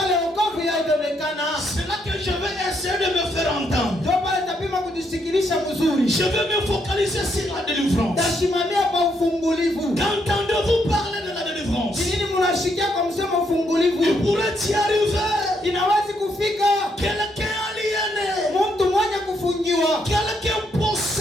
C'est là que je vais essayer de me faire entendre. Je vais me focaliser sur la délivrance. Qu'entendez-vous parler de la délivrance? Il pourrait y arriver. Quelqu'un aliéné, quelqu'un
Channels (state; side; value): normal; both; correlation 0.75